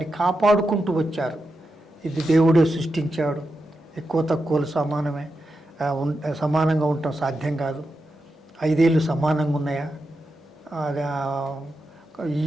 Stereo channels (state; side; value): normal; both; correlation 0.88